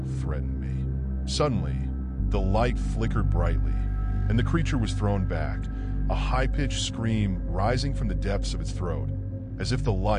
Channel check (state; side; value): identical; both; correlation 1.00